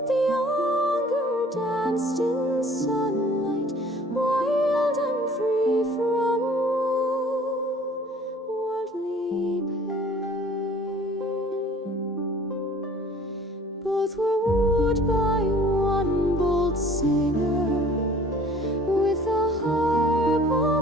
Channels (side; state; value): both; normal; correlation 0.51